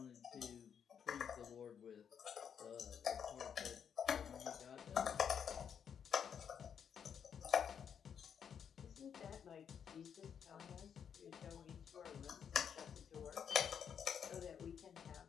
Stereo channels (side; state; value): right; quieter; 7.7 dB